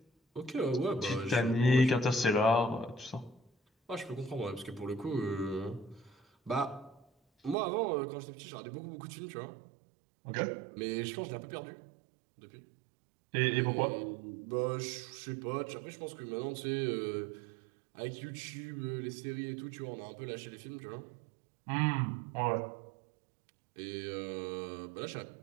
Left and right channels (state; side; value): drops out; left; at 7.6 s